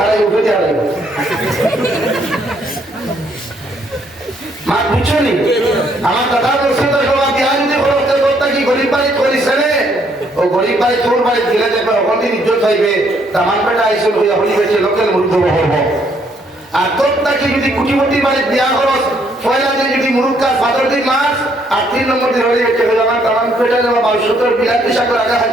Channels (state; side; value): normal; both; correlation 0.69